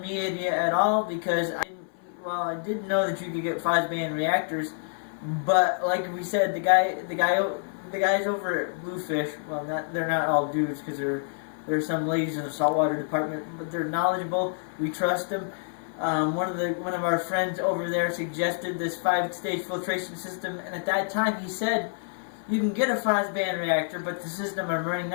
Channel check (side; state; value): right; silent; 60 dB below the other